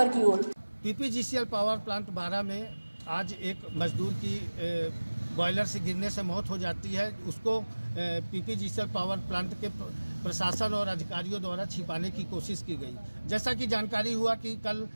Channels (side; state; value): both; inverted; correlation -1.00